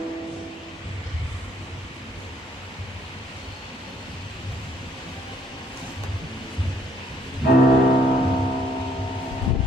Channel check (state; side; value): normal; both; correlation 0.65